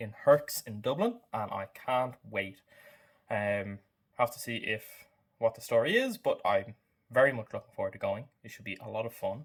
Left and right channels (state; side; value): identical; both; correlation 1.00